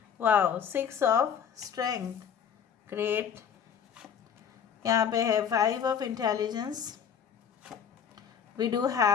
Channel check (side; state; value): right; quieter; 7.7 dB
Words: Wow, 6 of strength, great। यहाँ पे है 5 of intelligence, we do